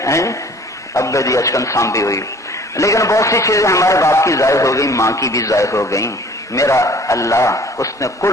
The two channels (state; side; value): normal; both; correlation 0.51